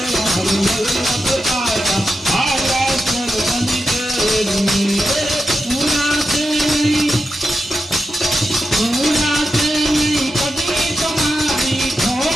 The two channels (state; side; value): normal; both; correlation 0.89